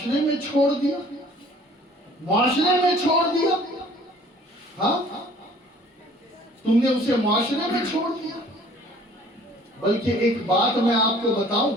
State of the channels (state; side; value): normal; both; correlation 0.53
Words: میں چھوڑ دیا. معاشرے میں چھوڑ دیا. ہاں، تم نے اسے معاشرے میں چھوڑ دیا. بلکہ ایک بات میں آپ کو بتاؤں،